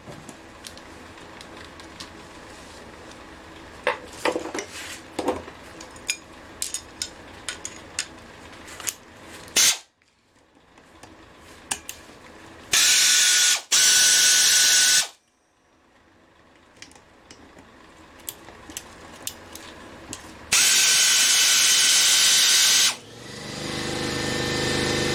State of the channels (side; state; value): both; identical; correlation 1.00